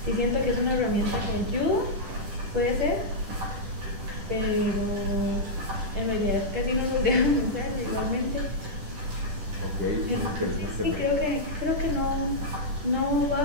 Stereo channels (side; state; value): left; late; 10 ms